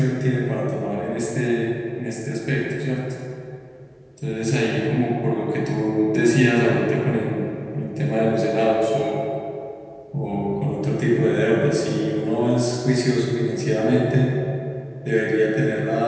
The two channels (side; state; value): both; identical; correlation 1.00